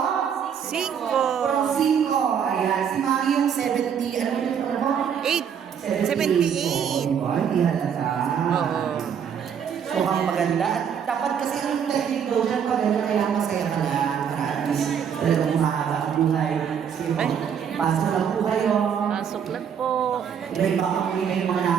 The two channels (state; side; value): quieter; left; 7.9 dB